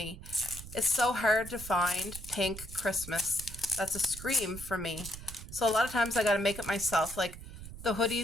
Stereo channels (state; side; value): noise; right; rumble, 13 dB below the sound